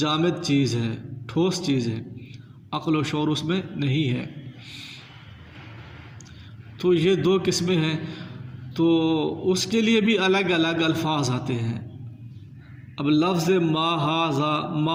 چیز ہے، ٹھوس چیز ہے، عقل و شعور اس میں نہیں ہے، تو یہ دو قسمیں ہیں. تو اس کے لیے بھی الگ الگ الفاظ آتے ہیں. اب لفظ ما ھذا،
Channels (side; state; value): both; identical; correlation 1.00